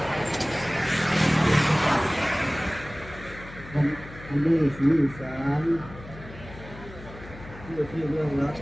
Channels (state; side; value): noise; left; hum, 16 dB below the sound